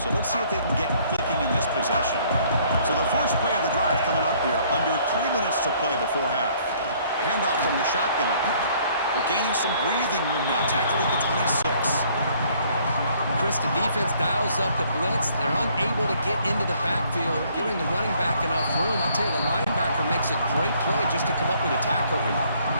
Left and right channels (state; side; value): inverted; both; correlation -0.62